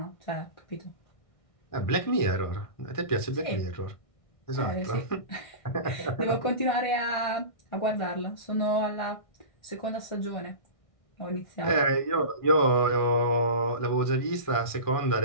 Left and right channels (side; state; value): right; late; 1.6 ms